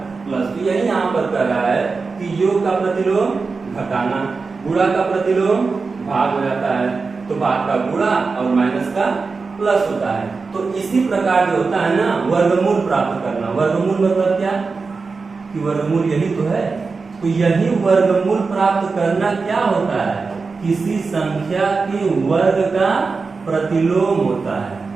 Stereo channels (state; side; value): quieter; left; 4.4 dB